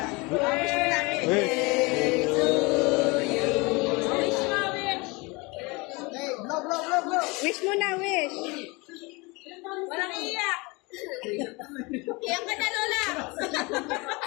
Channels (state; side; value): quieter; right; 26.2 dB